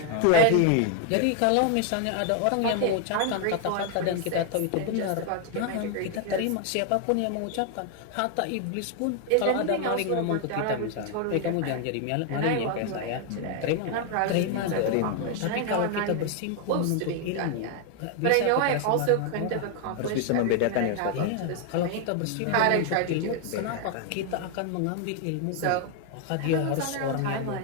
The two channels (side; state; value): both; different; correlation 0.00